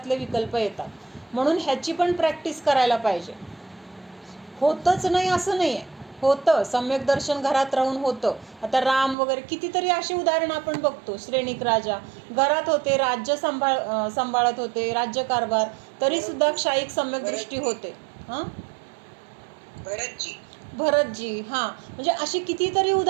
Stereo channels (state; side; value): drops out; left; at 9.2 s